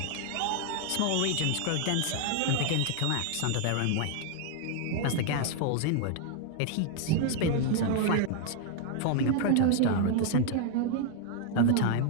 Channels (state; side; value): different; both; correlation 0.00